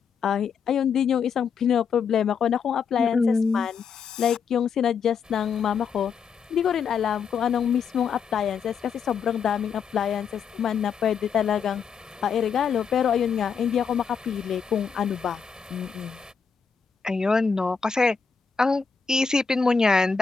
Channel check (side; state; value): right; quieter; 6.3 dB